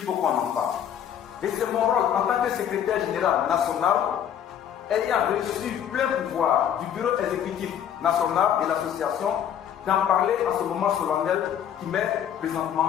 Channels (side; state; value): right; quieter; 9.4 dB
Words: qu'on en parle. Et c'est mon rôle en tant que secrétaire général national, ayant reçu plein pouvoir du bureau exécutif national de l'association, d'en parler à ce moment solennel qui m'est